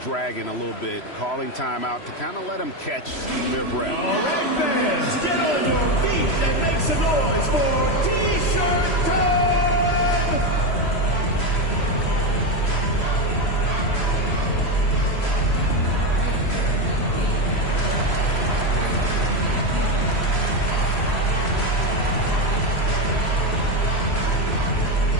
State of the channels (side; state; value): right; late; 3.0 ms